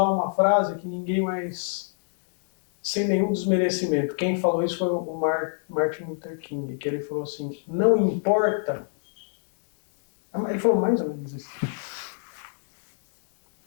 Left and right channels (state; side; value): silent; right; digital silence